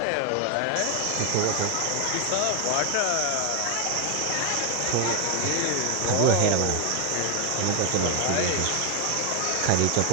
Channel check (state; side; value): different; both; correlation 0.01